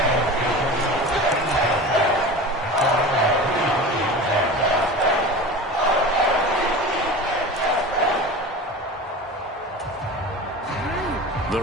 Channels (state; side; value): normal; both; correlation 0.33